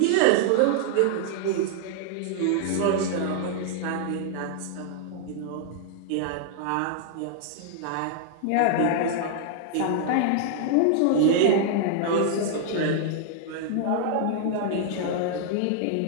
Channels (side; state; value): both; different; correlation -0.01